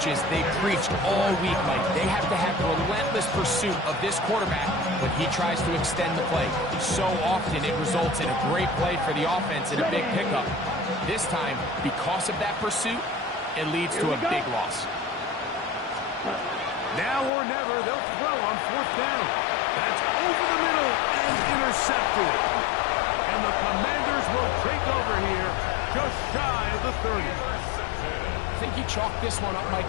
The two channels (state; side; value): drops out; right; at 17.3 s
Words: they preached all week, Mike. They have to have relentless pursuit of this quarterback when he tries to extend the play. So often it results in a great play for the offense and a big pickup. This time, because of that pursuit, it leads to a big loss. Now or never, they'll throw on 4th down. That's over the middle and intercepted. And the Commanders will take over here just shy of the 30. I think you chalk this one up, Mike,